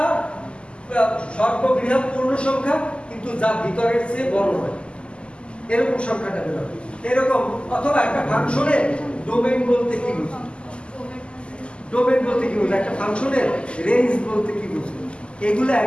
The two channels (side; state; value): right; late; 0.052 ms